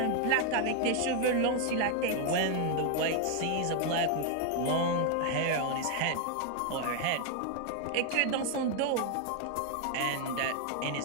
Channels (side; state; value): both; different; correlation 0.00